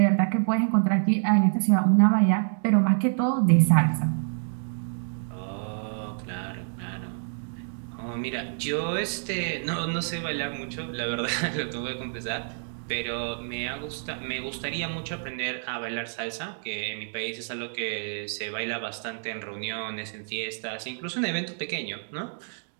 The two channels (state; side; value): silent; left; digital silence